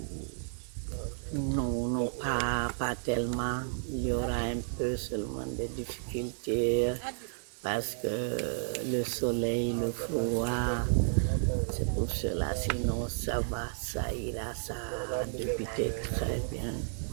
Non, pas tellement. Il y aura un peu seulement des difficultés parce que le soleil, le froid, c'est pour cela. Sinon, ça va, ça ira, ça a débuté très bien.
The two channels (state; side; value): silent; left; digital silence